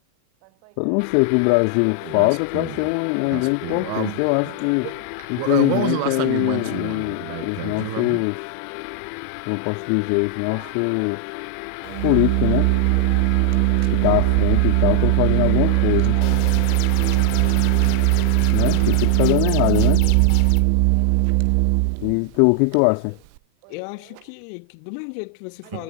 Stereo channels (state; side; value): different; both; correlation 0.00